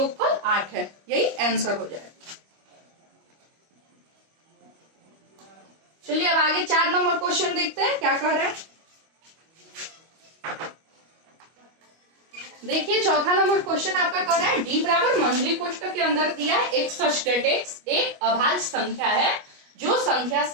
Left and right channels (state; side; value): late; left; 25 ms